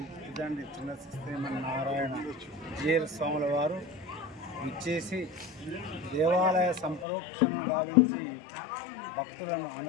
తిదండి చిన్న శ్రీమన్నారాయణ జీర్ స్వాముల వారు ఇచ్చేసి దేవాలయ సంప్రోక్షణ గావించి భక్తులను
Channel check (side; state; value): right; drops out; at 7.1 s